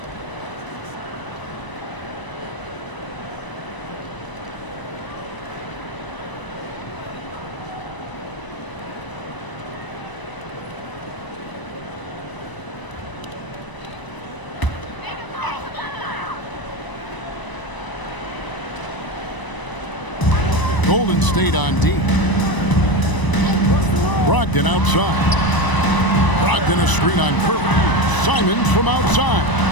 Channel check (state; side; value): late; right; 1.0 ms